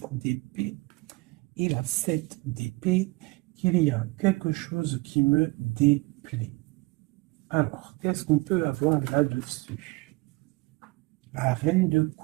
d'épée et la 7 d'épée, qu'il y a quelque chose qui me déplaît. Alors, qu'est-ce qu'on peut avoir là-dessus? La reine de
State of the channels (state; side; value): quieter; left; 24.1 dB